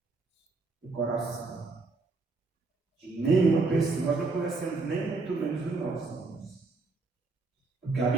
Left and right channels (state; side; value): quieter; left; 3.8 dB